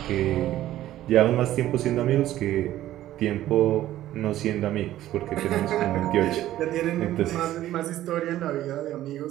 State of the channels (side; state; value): left; quieter; 13.7 dB